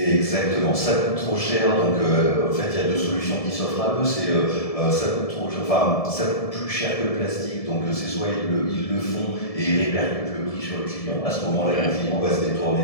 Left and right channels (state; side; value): late; right; 1.7 ms